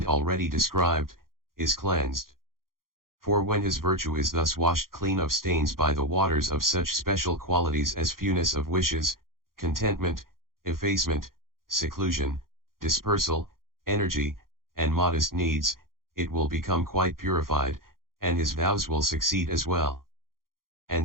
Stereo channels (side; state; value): left; late; 0.92 ms